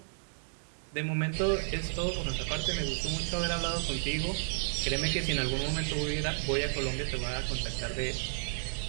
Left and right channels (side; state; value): left; silent; digital silence